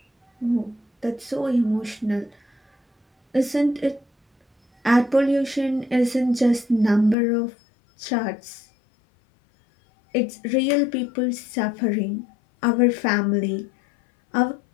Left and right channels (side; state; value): right; drops out; at 7.2 s